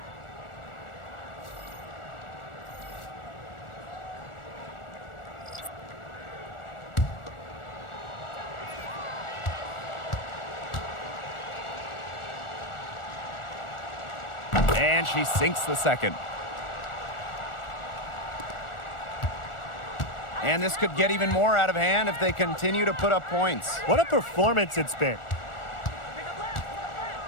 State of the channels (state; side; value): late; right; 1.4 ms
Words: And she sinks the second. And this could get even more out of hand if they continue to put up points. What a performance it's been.